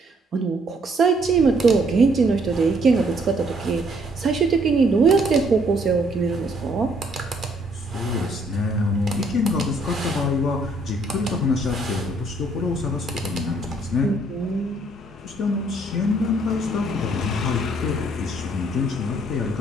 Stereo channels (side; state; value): both; normal; correlation 0.66